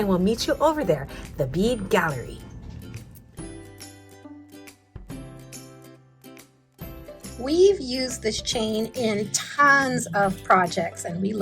we'll meet you over there, the Bead Gallery. We've used this chain in tons of projects, and we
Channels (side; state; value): both; identical; correlation 1.00